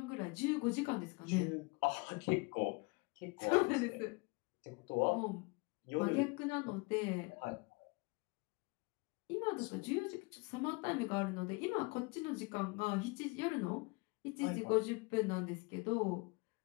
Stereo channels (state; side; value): quieter; right; 28.1 dB